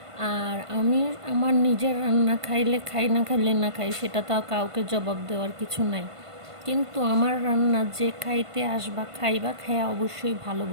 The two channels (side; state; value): left; late; 1.5 ms